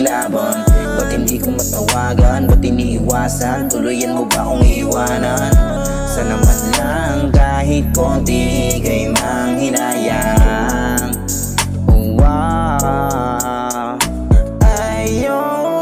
Ba't hindi ko matawagan? Ba't iniiwasan? Tuluyan mo ba akong iiwanan? Sana man lang kahit konti kay manghinayang. Wow,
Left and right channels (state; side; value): identical; both; correlation 1.00